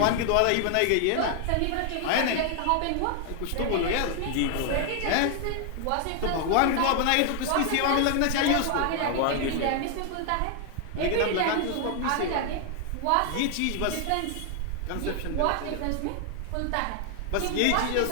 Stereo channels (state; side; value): different; both; correlation 0.00